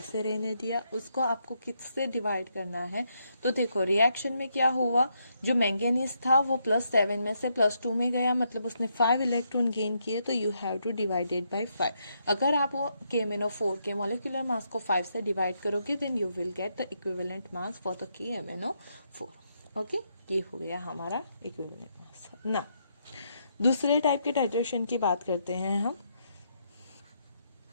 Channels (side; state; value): both; inverted; correlation -0.78